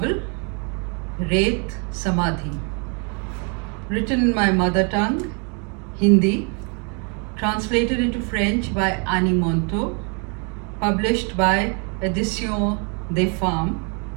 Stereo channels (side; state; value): left; quieter; 36.8 dB